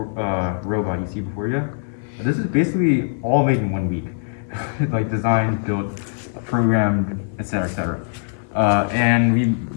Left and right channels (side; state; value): right; silent; 59 dB below the other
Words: robot you see before you, this is basically all made in 1 week. Like designed, built, programmed, etc., etc. And we